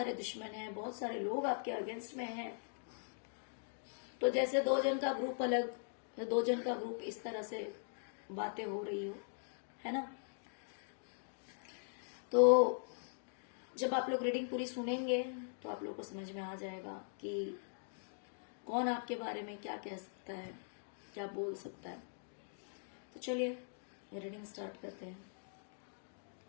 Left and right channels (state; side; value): silent; right; digital silence